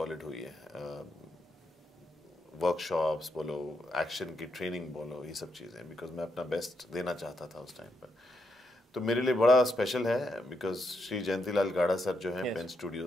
हुई है। वर्कशॉप्स बोलो, एक्शन की ट्रेनिंग बोलो, ये सब चीज़ें, बिकॉज मैं अपना बेस्ट देना चाहता था उस टाइम पर। तो मेरे लिए बड़ा स्पेशल है, बिकॉज श्री जयंतीलाल गाड़ा सर जो हैं पेन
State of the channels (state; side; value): normal; both; correlation 0.80